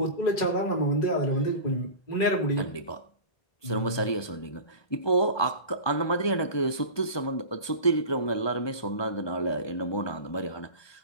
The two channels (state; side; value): late; right; 1.2 ms